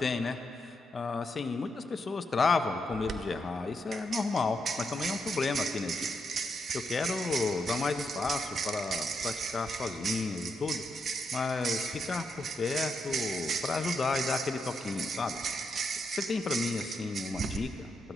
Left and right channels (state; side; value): normal; both; correlation 0.81